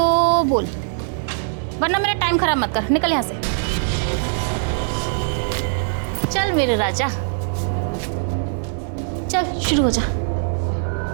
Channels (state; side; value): silent; left; digital silence